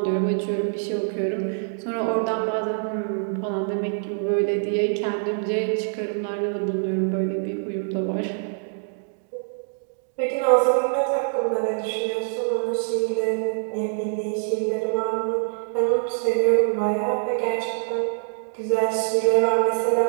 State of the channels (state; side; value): silent; left; digital silence